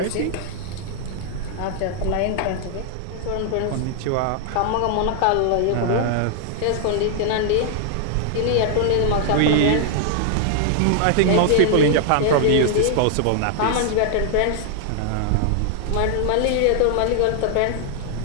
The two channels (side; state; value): both; different; correlation 0.00